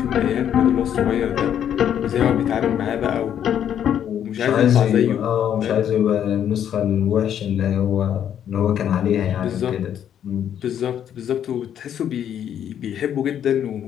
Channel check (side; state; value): right; quieter; 9.6 dB